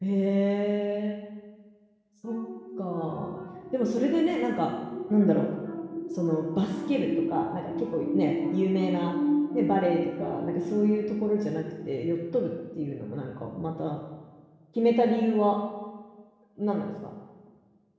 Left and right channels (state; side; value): identical; both; correlation 1.00